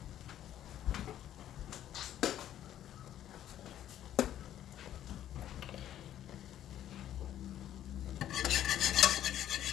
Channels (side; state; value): right; quieter; 11.6 dB